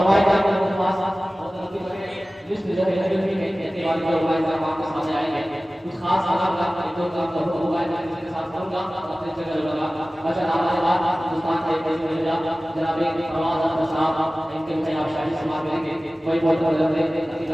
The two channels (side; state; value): both; normal; correlation 0.97